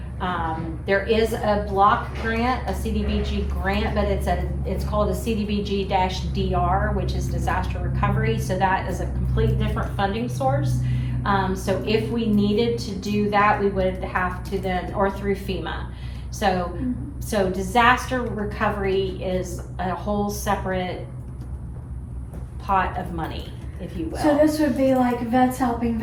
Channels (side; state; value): both; identical; correlation 1.00